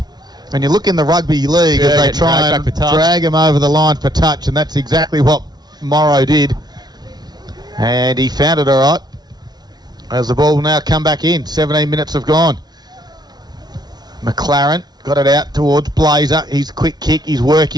when you look in the rugby league, as they try and drag him over the line for touch, and that's exactly what Morrow did. And he found it all right. As the ball will now come back in. 17 minutes have gone. McLaren got it out towards Blazer. His quick kick, his work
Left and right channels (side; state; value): left; late; 0.19 ms